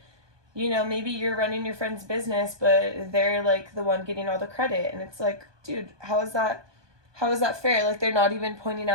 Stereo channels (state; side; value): late; left; 1.2 ms